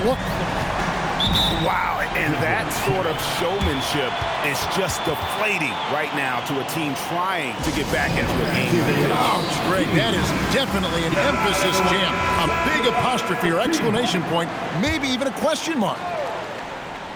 look. Wow, and that sort of showmanship is just deflating right now to a team trying to get back into a game. Oh, great. That is definitely an emphasis jam. A big apostrophe or exclamation point, maybe even a question mark.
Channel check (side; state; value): both; identical; correlation 1.00